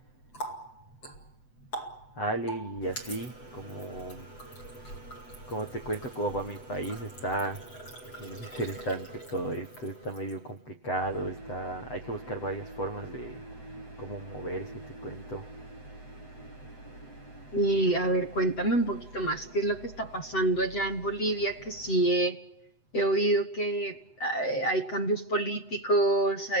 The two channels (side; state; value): right; late; 7.9 ms